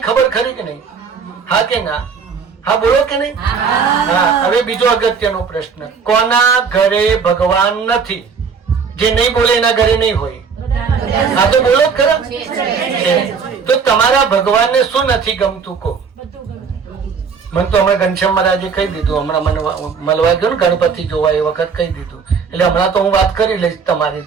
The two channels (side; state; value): left; quieter; 5.8 dB